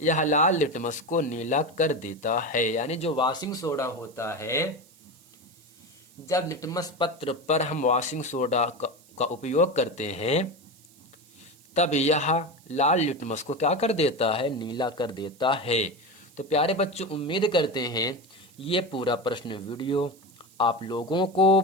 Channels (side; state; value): right; noise; hiss, 27 dB below the sound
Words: यह लाल लिटमस को नीला कर देता है। यानी जो वॉशिंग सोडा होता है जब लिटमस पत्र पर हम वॉशिंग सोडा का उपयोग करते हैं तब यह लाल लिटमस को क्या कर देता है, नीला कर देता है। तो प्यारे बच्चों, उम्मीद करते हैं ये पूरा प्रश्न वीडियो आप लोगों को